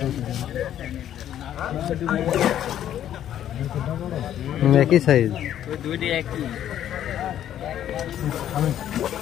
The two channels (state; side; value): quieter; right; 11.0 dB